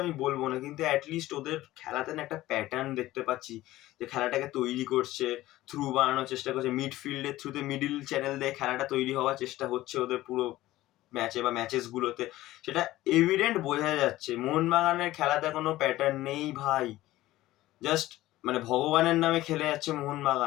আমি বলবো না, কিন্তু অ্যাটলিস্ট ওদের খেলাতে না একটা প্যাটার্ন দেখতে পাচ্ছি, যে খেলাটাকে তৈরি করছে, থ্রু বানানোর চেষ্টা করছে, মিডফিল্ডের থ্রুতে মিডিল চ্যানেল দিয়ে খেলাটা তৈরি হওয়ার চেষ্টা হচ্ছে ওদের পুরো ম্যাচে বা ম্যাচেস গুলোতে। সেটা এভিডেন্ট বোঝা যাচ্ছে। মোহনবাগানের খেলাতে কোনো প্যাটার্ন নেই ভাই, জাস্ট মানে ভগবানের নামে খেলে যাচ্ছে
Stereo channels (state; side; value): quieter; right; 16.3 dB